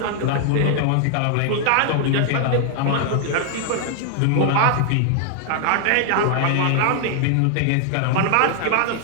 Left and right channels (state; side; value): different; both; correlation 0.00